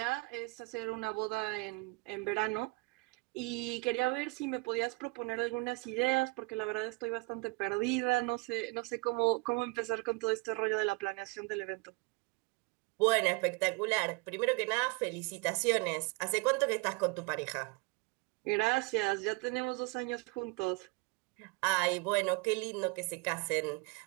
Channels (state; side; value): quieter; left; 28.3 dB